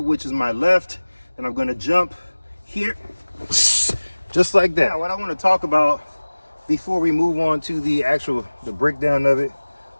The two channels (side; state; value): both; inverted; correlation -1.00